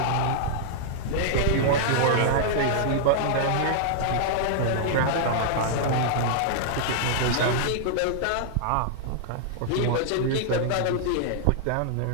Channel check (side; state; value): both; different; correlation -0.01